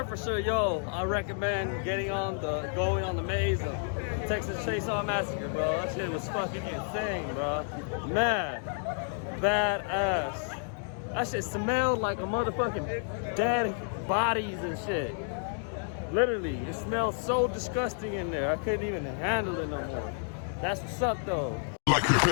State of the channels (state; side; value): silent; right; 58 dB below the other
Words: For sure, yo, I recommend going on the maze of Texas Chainsaw Massacre, bro. That shit was fucking insane, bro. Man, badass. That shit smelled like a motherfucking dead bodies and shit. Literally, it smelled so disgusting in there. I couldn't even handle it no more. That's what's up, though. Like a